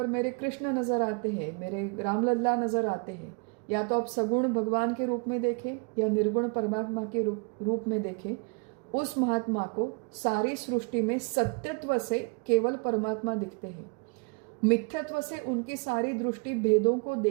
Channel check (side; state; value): left; quieter; 35.3 dB